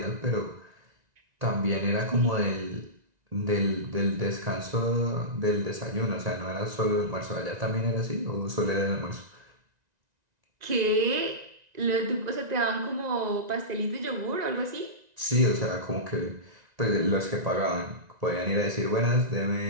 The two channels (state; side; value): late; left; 1.9 ms